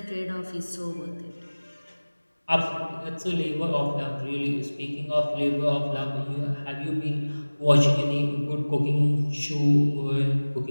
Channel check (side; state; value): both; inverted; correlation -1.00